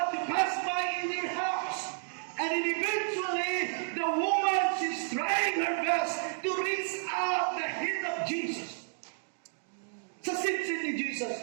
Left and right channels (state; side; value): silent; left; digital silence